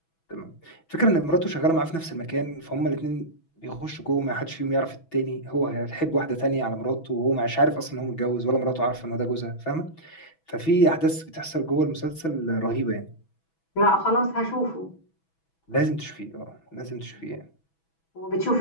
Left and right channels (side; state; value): right; late; 6.1 ms